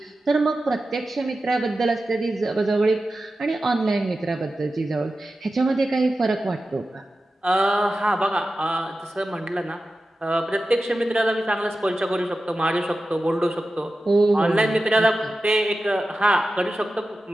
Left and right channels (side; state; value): both; normal; correlation 0.93